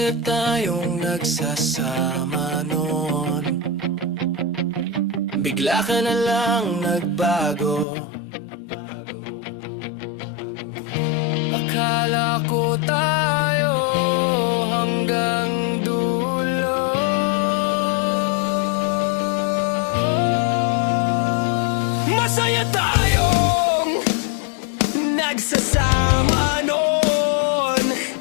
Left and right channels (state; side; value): drops out; right; at 7.9 s